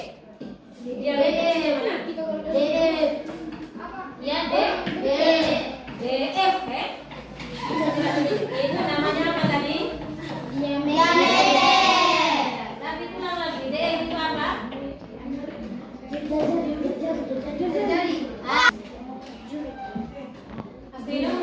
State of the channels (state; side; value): identical; both; correlation 1.00